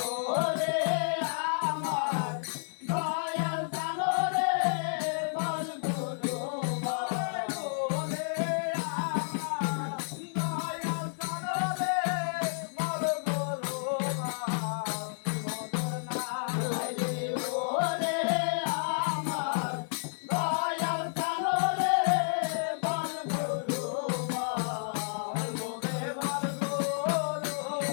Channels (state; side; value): silent; right; digital silence